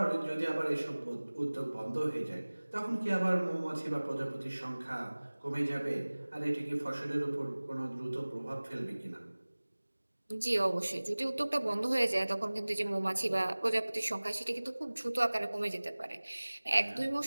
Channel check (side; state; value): both; inverted; correlation -1.00